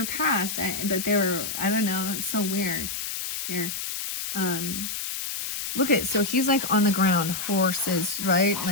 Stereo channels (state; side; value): noise; left; hiss, 4 dB below the sound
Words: past, but they were, I don't know. It's so weird here. Look at, so he's like on the ground, horses, right?